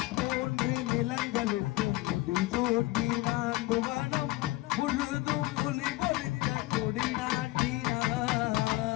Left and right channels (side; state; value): right; quieter; 19.6 dB